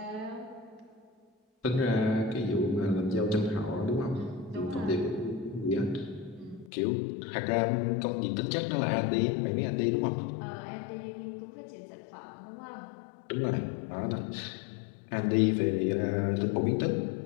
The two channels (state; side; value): drops out; right; at 6.7 s